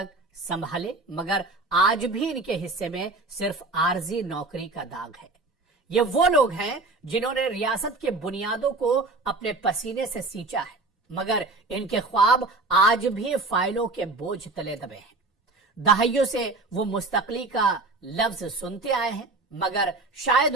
संभाले, मगर आज भी इनके हिस्से में सिर्फ आरजी नौकरी का दाग है। ये वो लोग हैं जिन्होंने रियासत के बुनियादों को अपने पसीने से सींचा है, मगर इनके ख्वाब आज भी फाइलों के बोझ तले दबे हैं। दहाइयों से वो मुस्तकली का लफ्ज सुनते आए हैं, मगर शायद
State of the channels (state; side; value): quieter; left; 3.3 dB